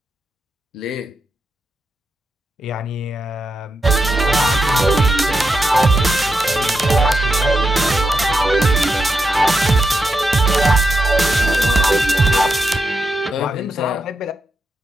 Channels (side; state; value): both; normal; correlation 0.85